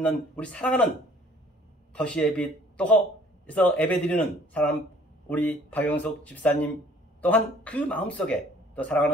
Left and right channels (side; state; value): both; normal; correlation 0.56